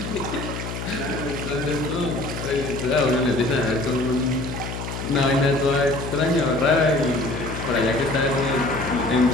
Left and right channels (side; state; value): left; noise; hum, 7 dB below the sound